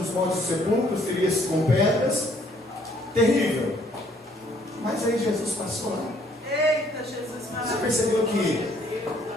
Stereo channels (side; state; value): both; normal; correlation 0.64